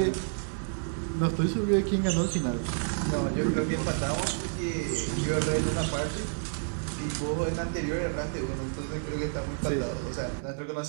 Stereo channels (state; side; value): silent; left; digital silence